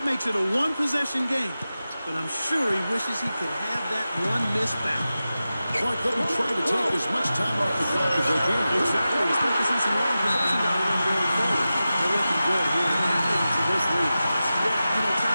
makes it a one-possession game, but I'm sure he wishes he could have that one miss back. Clark, let them try to take as much time off the clock as they can. Exactly. Expect to see some long possessions out of them going forward. They're looking good here into this league. Yeah,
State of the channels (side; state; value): both; inverted; correlation -0.94